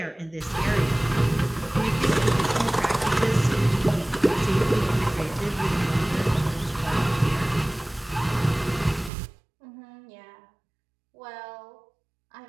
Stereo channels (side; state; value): left; drops out; at 9.1 s